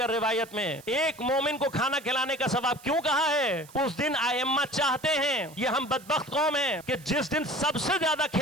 रिवायत में। एक मोमिन को खाना खिलाने का सवाब क्यों कहा है? उस दिन आइम्मा चाहते हैं, ये हम बदबख्त कौम हैं कि जिस दिन सबसे ज्यादा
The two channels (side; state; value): right; noise; hiss, 22 dB below the sound